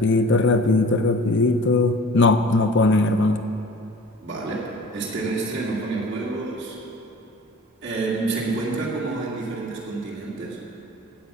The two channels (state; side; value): normal; both; correlation 0.43